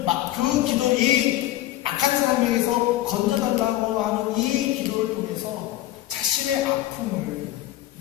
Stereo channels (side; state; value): right; quieter; 14.8 dB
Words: 이 악한 사람에게서 건져달라고 하는 이 기도를 통해서 자신의 아픔을